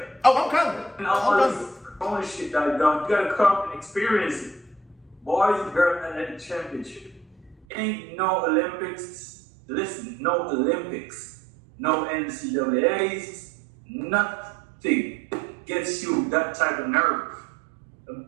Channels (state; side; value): drops out; left; at 7.7 s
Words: Oh, I'm coming. And all this ownership that I've done, you gotta come and experience it. Boys and girls and the championship. Ain't no Olympics. Listen, no Olympics, no NCAAs, nothing gets you that type of nerve. I'm